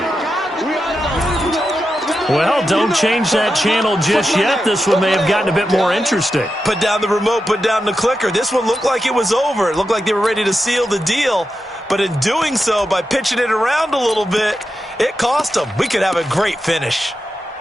Well, don't change that channel just yet. This one may have gotten a bit more interesting. Put down the remote, put down the clicker. This one looked like it was over. It looked like they were ready to seal the deal. But in doing so, by pitching it around a little bit, it cost them. We could have a great finish.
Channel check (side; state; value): both; normal; correlation 0.89